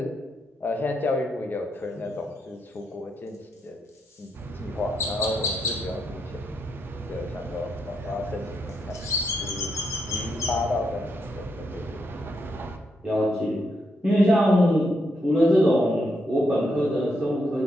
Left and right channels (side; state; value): both; normal; correlation 0.80